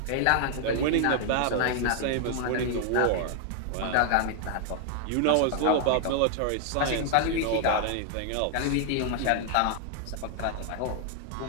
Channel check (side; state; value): both; different; correlation 0.00